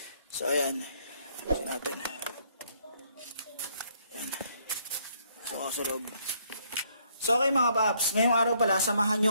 So ayan. Ayusin natin. Ayan. Makasarap. So okay mga paps, ngayong araw pala, samahan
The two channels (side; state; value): both; inverted; correlation -0.69